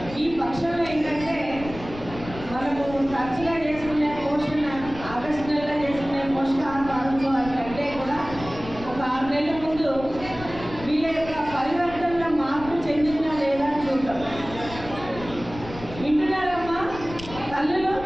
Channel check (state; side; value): noise; left; rumble, 14 dB below the sound